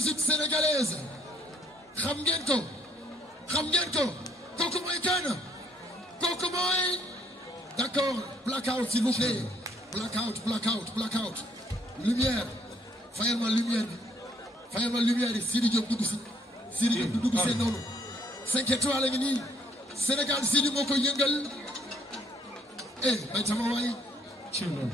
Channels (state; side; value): normal; both; correlation 0.66